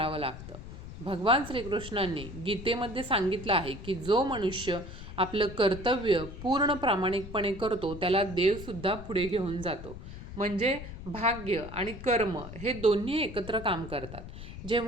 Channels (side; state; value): left; noise; rumble, 12 dB below the sound